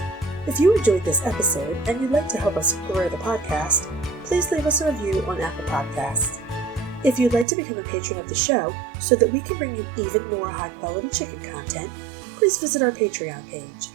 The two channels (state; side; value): drops out; left; at 7.5 s